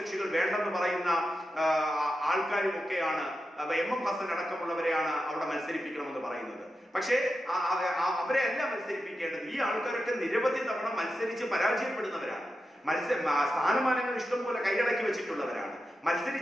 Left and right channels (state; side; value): normal; both; correlation 0.90